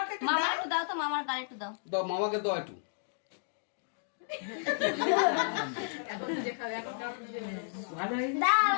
মামা একটু দাও তো মামার গাল একটু দাও দাও মামাকে দাও একটু এখন যে খাবে এখন ভালো দাও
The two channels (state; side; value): silent; right; digital silence